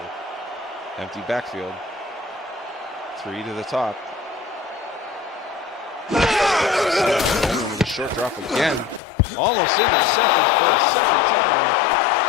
Empty backfield. 3 to the top. Dolman with a short drop again. Almost intercepted for a second time.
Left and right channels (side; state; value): right; drops out; at 9.0 s